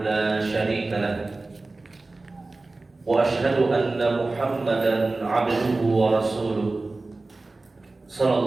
لا شريك له وأشهد أن محمدا عبده ورسوله صلى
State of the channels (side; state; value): left; quieter; 3.3 dB